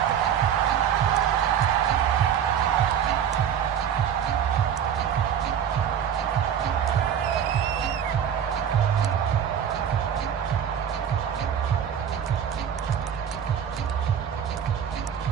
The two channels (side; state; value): left; quieter; 8.7 dB